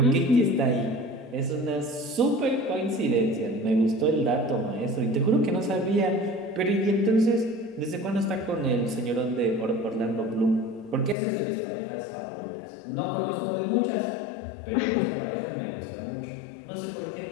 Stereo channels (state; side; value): drops out; right; at 11.2 s